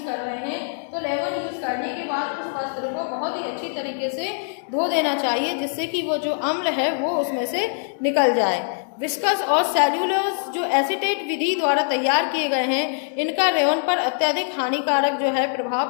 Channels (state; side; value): silent; right; digital silence